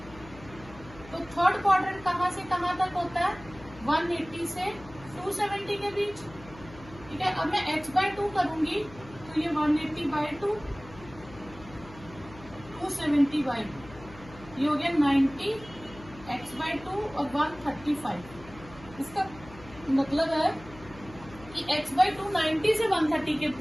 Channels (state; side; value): noise; left; hum, 19 dB below the sound